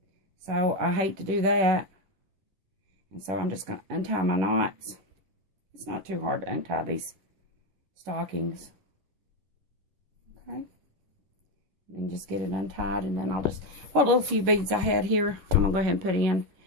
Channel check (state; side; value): late; left; 11 ms